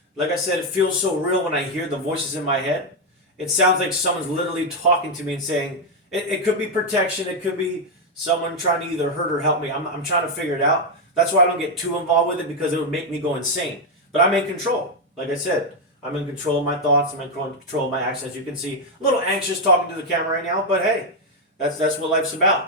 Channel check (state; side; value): normal; both; correlation 0.03